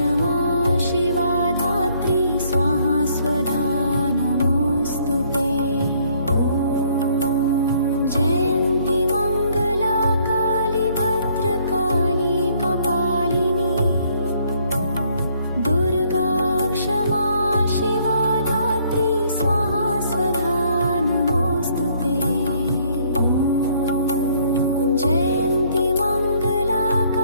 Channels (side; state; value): both; inverted; correlation -0.65